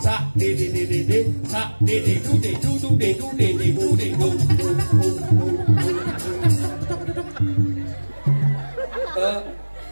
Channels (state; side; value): inverted; both; correlation -1.00